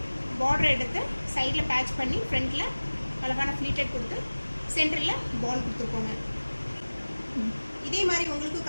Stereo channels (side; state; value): both; inverted; correlation -1.00